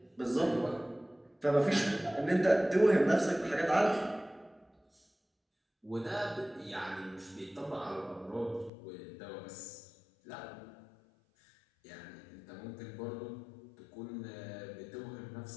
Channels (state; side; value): drops out; right; at 8.7 s